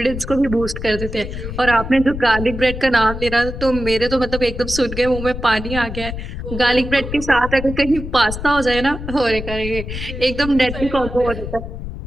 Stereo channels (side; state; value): left; noise; rumble, 8 dB below the sound